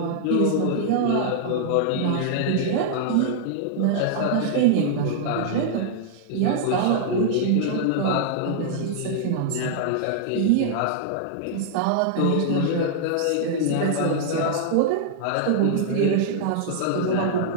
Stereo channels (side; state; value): both; different; correlation -0.01